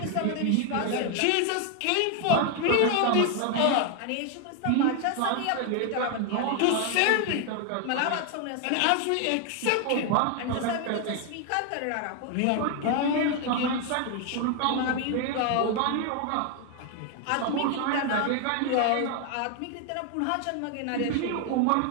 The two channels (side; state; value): both; different; correlation 0.01